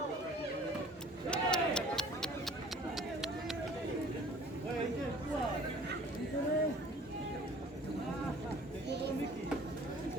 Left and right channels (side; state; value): both; normal; correlation 0.50